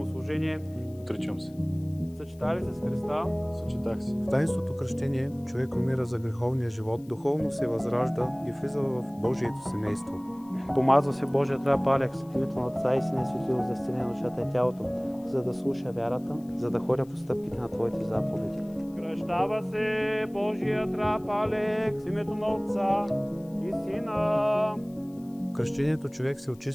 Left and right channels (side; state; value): left; noise; hiss, 28 dB below the sound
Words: служение. Отричам се. Съчета ли се с Христа? Съчетах се. В таинството кръщение човек умира за греховния живот, духовно се възражда и влиза в Божието семейство. Помазва се Божия трап Алекс, в името на Отца и Сина и Светлиго, за изцеление на душата и тялото, за да слуша вярата, за да ходя по стъпките на Твоите заповеди. Кръщава се Божия трап Алекс, в името на Отца и Сина. В кръщението човек се